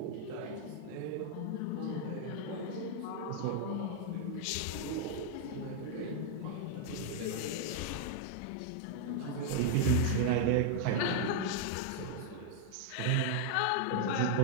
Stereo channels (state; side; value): different; both; correlation -0.01